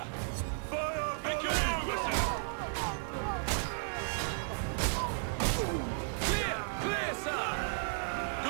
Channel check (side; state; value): left; silent; 55 dB below the other